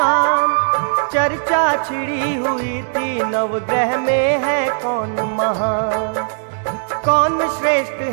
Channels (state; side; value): silent; left; digital silence